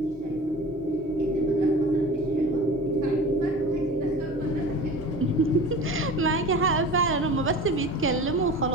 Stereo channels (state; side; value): normal; both; correlation 0.37